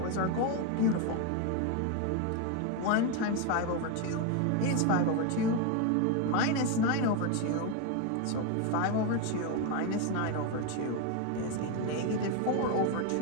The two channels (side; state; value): both; different; correlation 0.02